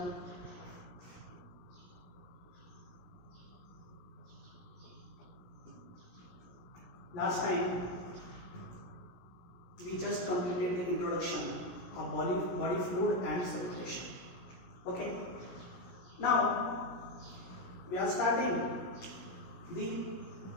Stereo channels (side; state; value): right; late; 17 ms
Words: last time we just completed the introduction of body fluid and circulation. Okay, now we are starting the